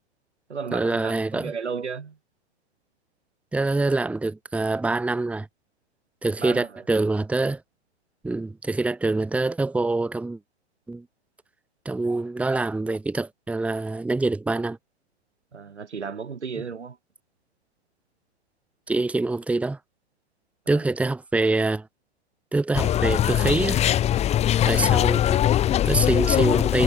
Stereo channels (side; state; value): both; normal; correlation 0.67